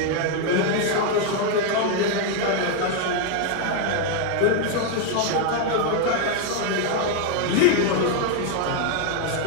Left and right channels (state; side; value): different; both; correlation 0.01